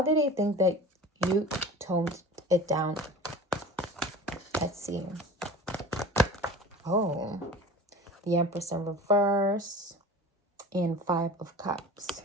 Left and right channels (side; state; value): both; normal; correlation 0.38